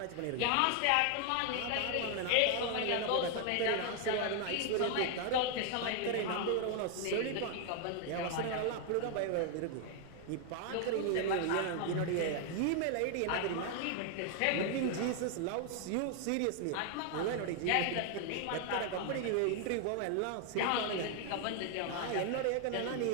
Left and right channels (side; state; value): both; different; correlation 0.00